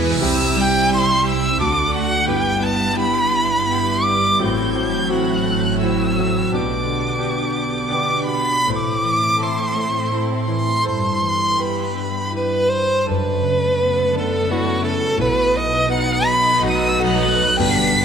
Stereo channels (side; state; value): both; normal; correlation 0.65